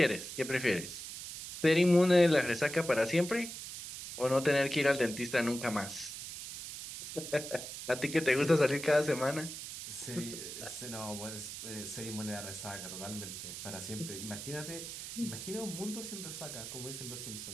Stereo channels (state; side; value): noise; right; hiss, 9 dB below the sound